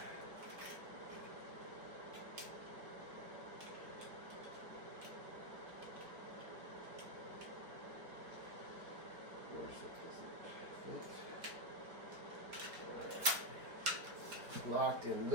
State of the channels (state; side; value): late; left; 5.1 ms